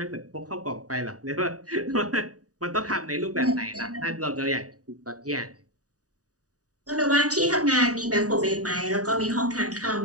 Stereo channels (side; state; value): left; late; 0.67 ms